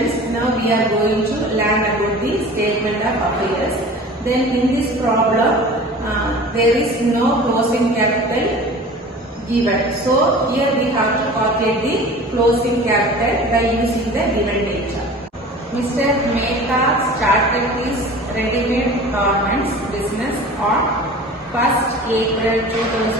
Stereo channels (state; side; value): normal; both; correlation 0.40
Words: now we are going to learn about the statement of affairs. Then in this problem, there is no closing capital given. So here we have to calculate the closing capital by using the given data. Mr. Mehta started his ready-made garments business on 1st April